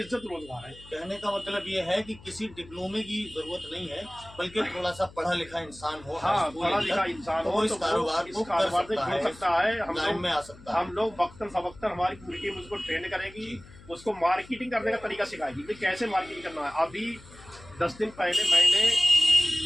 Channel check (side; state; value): left; noise; hum, 21 dB below the sound